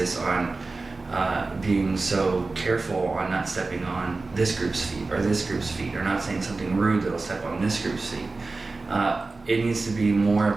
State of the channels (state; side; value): quieter; left; 3.6 dB